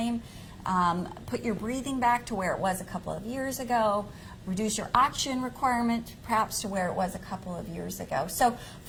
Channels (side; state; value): both; identical; correlation 1.00